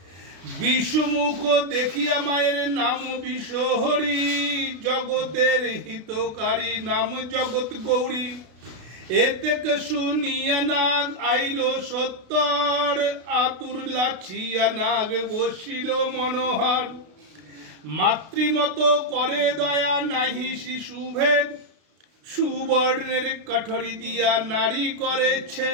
বিশ্বমুখ দেখিয়া মায়ের নাম বিশ্বহরি, জগতের হিতকারী নাম জগৎ গৌরী। এতে শুনিয়া নাগ আইল সত্তর, আতুর লাছিয়া নাগ বসিল মনোহর। মাতৃমত করে দয়া নাহি শিশুভেদ, সুবর্ণের কাঠরি দিয়া নারী করে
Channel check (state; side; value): late; left; 32 ms